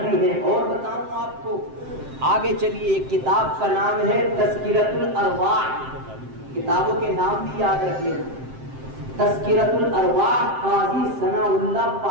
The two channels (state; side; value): late; left; 7.6 ms